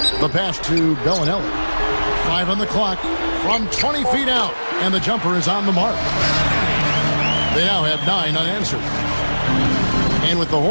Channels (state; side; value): inverted; both; correlation -1.00